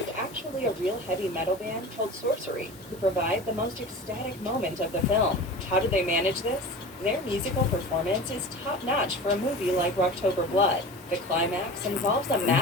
actually a real heavy metal band called Sorcery, who provide the most ecstatic moment of the film. How do they manage this? Their musical performance is top-notch for a movie like Rocktober Blood. The climax involves a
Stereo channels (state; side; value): normal; both; correlation 0.34